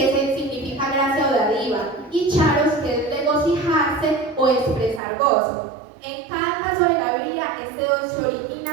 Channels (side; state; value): left; drops out; at 5.0 s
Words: significa gracia o dádiva, y charos, que es regocijarse o expresar gozo. En cada caso de la Biblia, este don se